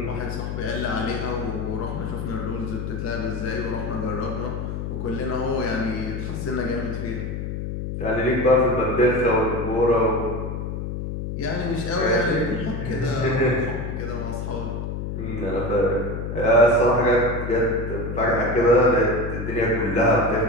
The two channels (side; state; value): left; noise; hum, 4 dB below the sound